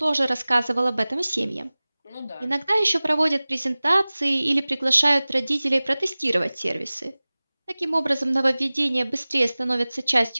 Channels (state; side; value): inverted; both; correlation -0.99